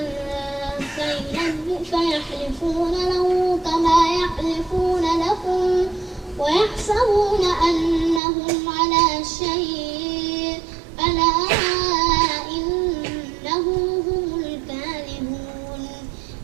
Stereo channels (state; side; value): drops out; left; at 8.2 s